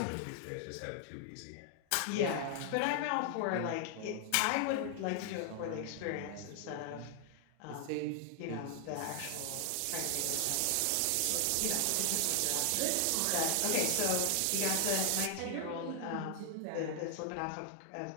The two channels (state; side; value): different; both; correlation 0.00